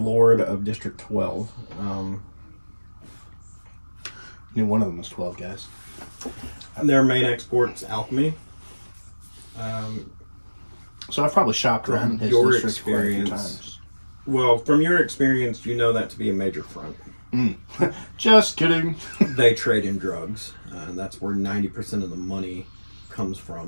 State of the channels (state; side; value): inverted; both; correlation -1.00